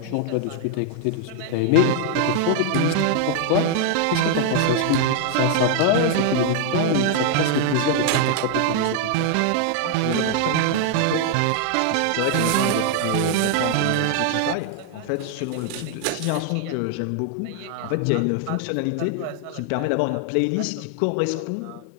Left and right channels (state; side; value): different; both; correlation 0.00